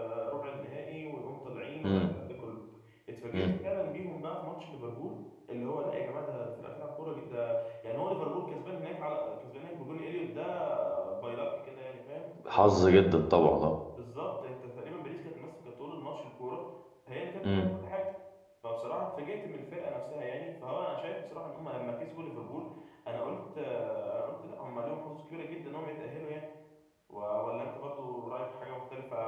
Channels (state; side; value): identical; both; correlation 1.00